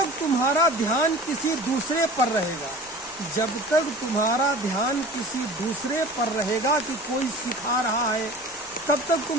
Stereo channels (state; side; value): normal; both; correlation 0.40